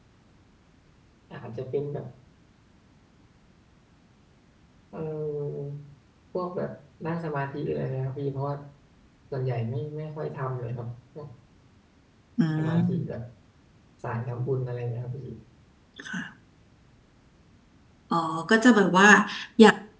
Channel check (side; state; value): both; identical; correlation 1.00